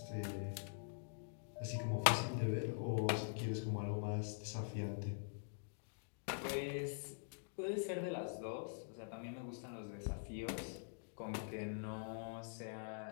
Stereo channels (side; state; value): right; silent; digital silence